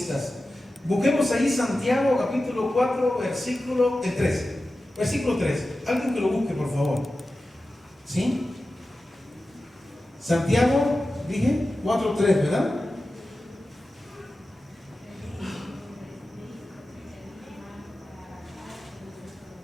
Busquemos ahí Santiago capítulo 4, versículo 3. Versículo 3. Alguien que lo busque, por favor. ¿Sí? Santiago, dije, 4, 3, ¿verdad?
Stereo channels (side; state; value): both; normal; correlation 0.94